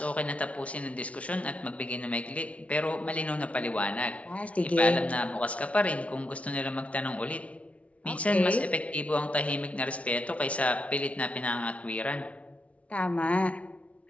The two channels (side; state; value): right; late; 0.064 ms